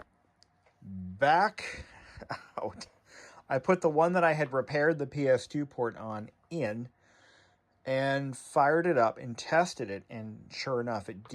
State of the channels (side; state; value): both; identical; correlation 1.00